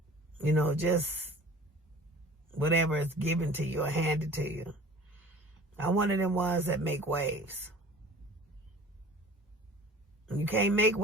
Just whatever is given to you or handed to you. I'm one of them ones that make waves. You can't make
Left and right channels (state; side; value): normal; both; correlation 0.44